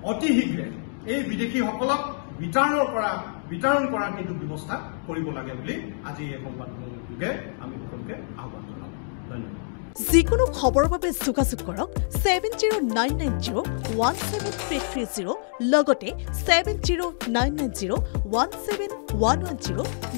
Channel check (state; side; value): silent; right; digital silence